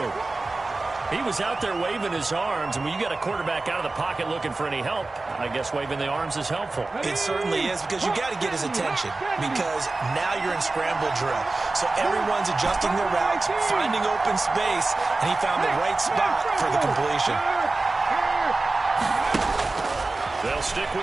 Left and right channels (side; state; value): left; quieter; 3.3 dB